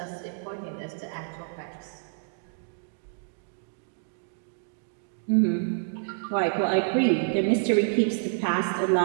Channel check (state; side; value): silent; left; digital silence